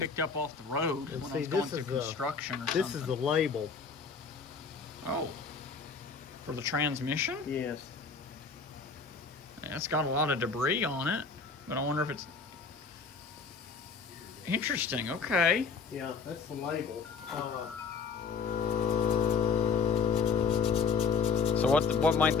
up off the road when I was going through construction or something. This is the label. Oh. For the transmission? Yes. Yeah, it's got a lot of debris on it, but I wonder if it's... Interesting, okay. Yeah, that's the label. So what might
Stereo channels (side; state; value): right; quieter; 5.2 dB